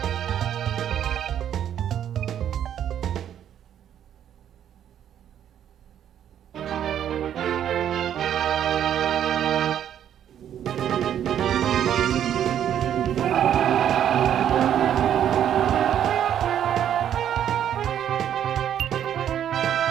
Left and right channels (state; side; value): quieter; left; 10.0 dB